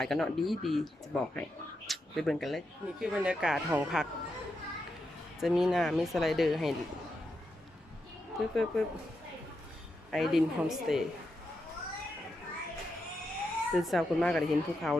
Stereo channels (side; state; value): both; normal; correlation 0.85